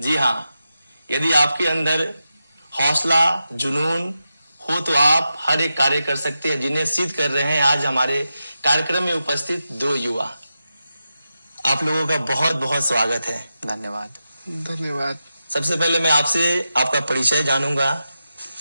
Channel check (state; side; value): inverted; both; correlation -0.90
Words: हां, यदि आपके अंदर हौसला, जुनून हो तो आप हर एक कार्य कर सकते हैं, जिन्हें सिद्ध कर रहे हैं आज हमारे कार्यक्रम में उपस्थित दो युवा। आप लोगों का बहुत बहुत स्वागत है। धन्यवाद। धन्यवाद। सबसे पहले मैं आपसे आपका परिचय जानूंगा।